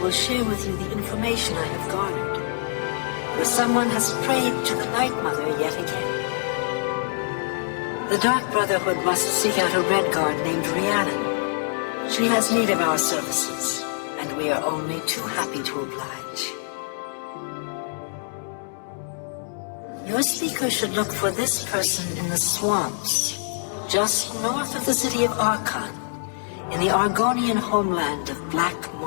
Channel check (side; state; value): right; silent; 62 dB below the other